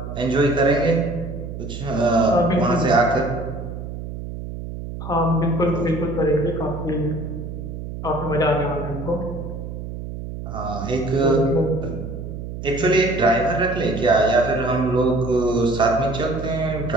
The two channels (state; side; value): noise; right; hum, 8 dB below the sound